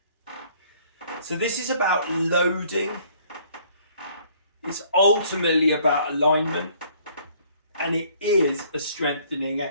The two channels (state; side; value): inverted; both; correlation -0.59